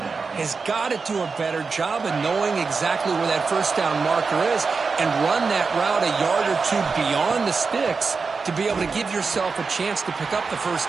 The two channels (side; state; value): left; quieter; 4.7 dB